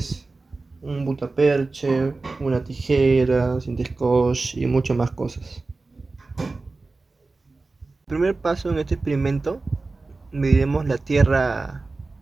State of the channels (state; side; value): quieter; left; 3.6 dB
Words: un butaperche, una tijera, cinta scotch y muchas más cosas. El primer paso en este experimento, mediremos